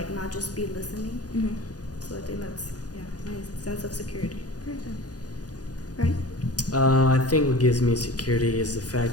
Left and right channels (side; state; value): right; late; 0.68 ms